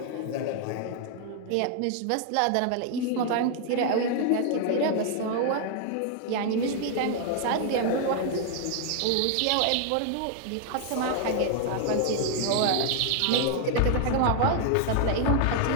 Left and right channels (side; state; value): both; different; correlation 0.00